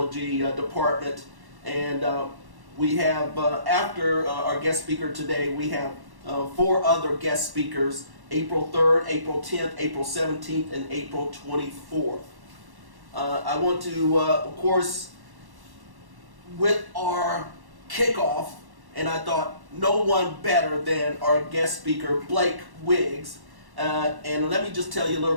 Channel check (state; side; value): late; left; 1.1 ms